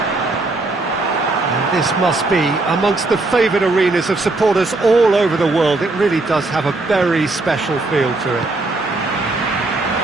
This must be amongst the favoured arenas of supporters all over the world. It really does have a very special feel to it.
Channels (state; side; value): quieter; left; 3.2 dB